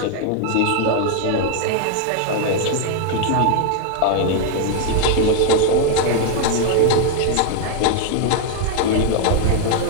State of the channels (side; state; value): both; different; correlation 0.00